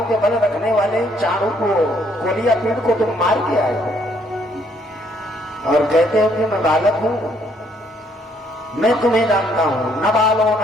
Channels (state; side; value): normal; both; correlation 0.68